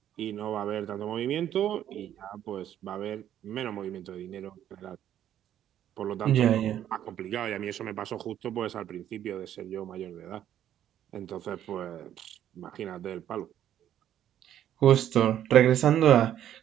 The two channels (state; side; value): quieter; left; 10.9 dB